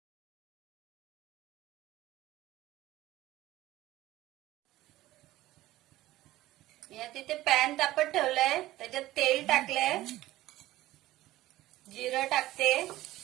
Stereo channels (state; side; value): quieter; left; 16.1 dB